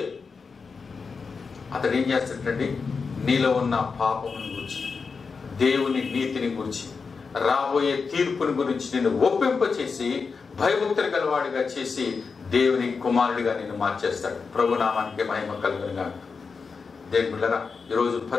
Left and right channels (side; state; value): right; quieter; 5.0 dB